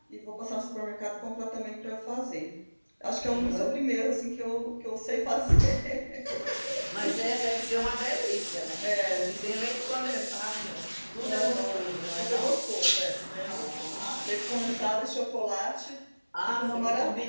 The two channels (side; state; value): both; inverted; correlation -1.00